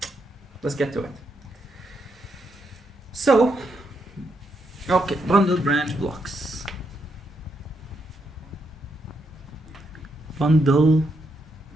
Let's get to it. So, okay, bundle branch blocks. Bundle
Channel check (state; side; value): normal; both; correlation 0.79